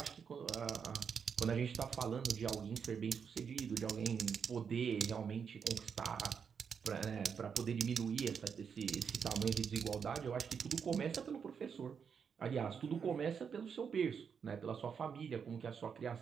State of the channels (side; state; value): left; quieter; 6.7 dB